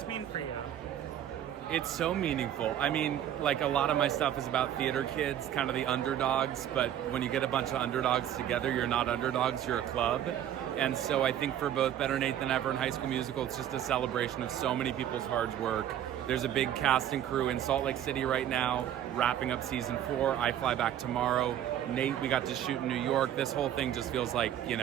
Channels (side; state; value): left; quieter; 10.8 dB